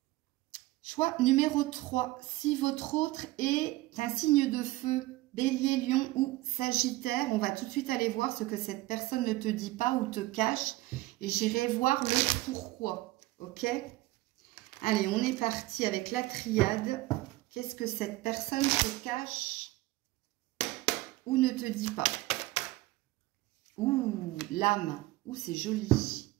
Choix numéro 3. Si votre autre est un signe de feu, Bélier, Lion ou Sagittaire, on va tout de suite aller voir ce que cette personne ne te dit pas ou te cache. Et j'irai voir le pourquoi. Ok? Allez, on est parti avec la triade. Qu'est-ce que cette personne te cache ou ne te dit pas? Ouh, l'âme. Ouh, c'est joli.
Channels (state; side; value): quieter; left; 18.7 dB